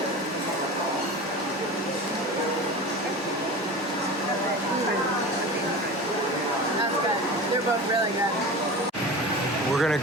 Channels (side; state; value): both; normal; correlation 0.32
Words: That's good. They're both really good. We're